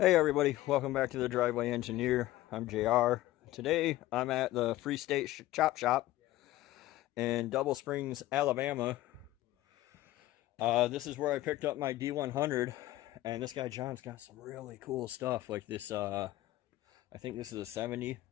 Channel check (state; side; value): quieter; right; 16.0 dB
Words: everybody, welcome back to the Driveway Engineer. I'm JR. Today I'm at the Free State Chop Shop in Double Springs, Alabama. This is where I picked up my D100, and this guy John's got some really cool stuff like this. I think this is a 70.